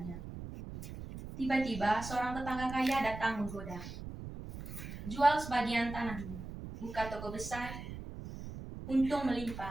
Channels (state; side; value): noise; right; rumble, 10 dB below the sound